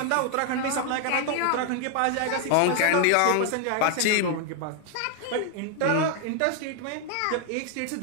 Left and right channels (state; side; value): different; both; correlation 0.00